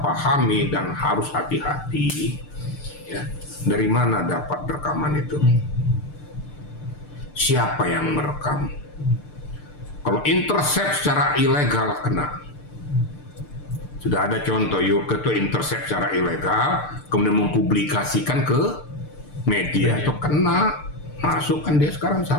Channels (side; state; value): right; late; 6.7 ms